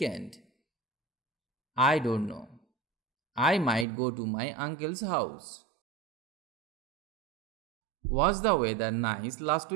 I don't know. I might go to my uncle's house. Was the weather nice last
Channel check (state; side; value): drops out; left; at 3.9 s